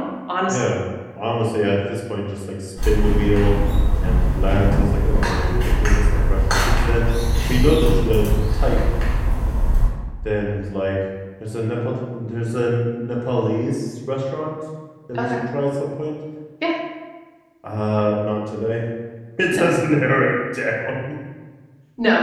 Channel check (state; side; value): identical; both; correlation 1.00